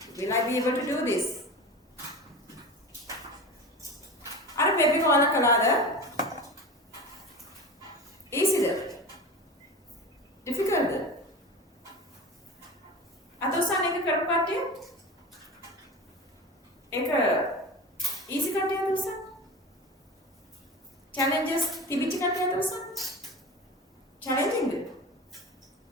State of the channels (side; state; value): both; normal; correlation 0.31